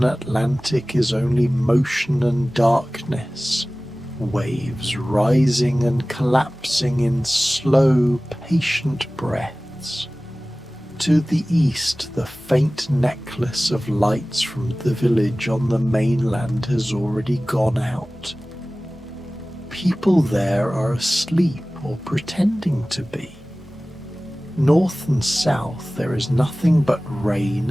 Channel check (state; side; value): normal; both; correlation 0.98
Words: Atlantic is only motion and darkness, waves rising and collapsing in slow, patient breaths. To the east, the faint necklace of lights from the village on the mainland has already gone out. People there are asleep or pretending to be. North and south there is nothing but rain